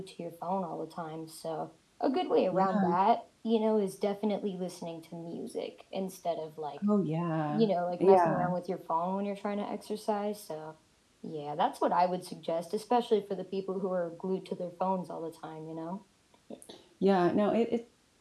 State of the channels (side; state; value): both; identical; correlation 1.00